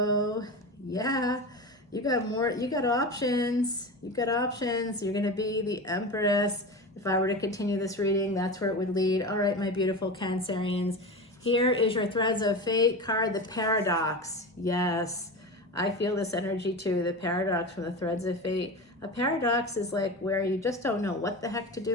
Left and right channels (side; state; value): both; normal; correlation 0.26